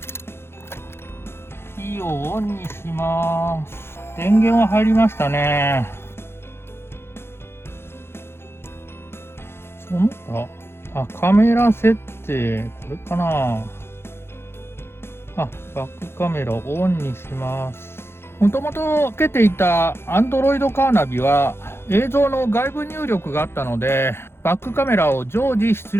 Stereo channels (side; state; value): right; late; 0.12 ms